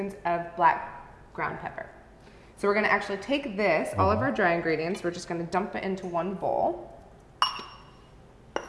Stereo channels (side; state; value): both; identical; correlation 1.00